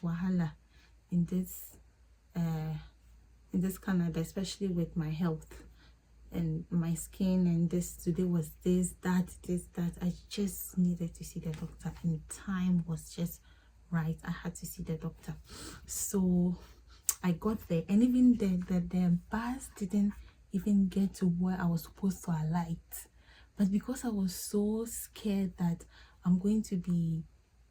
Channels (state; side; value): identical; both; correlation 1.00